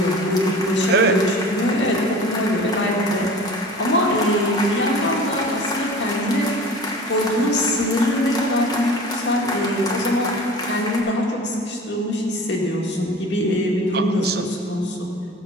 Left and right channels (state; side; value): normal; both; correlation 0.40